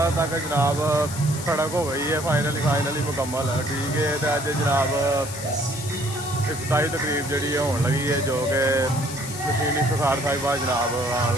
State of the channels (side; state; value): left; noise; hiss, 10 dB below the sound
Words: तक जनाब सड़क हो गई है फाइनली मुकम्मल। ठीक है, तो अज जनाब इफ्तारी तकरीब जी होने लगी है, जो कि मशीनी सरकार साहिबा जनाब आन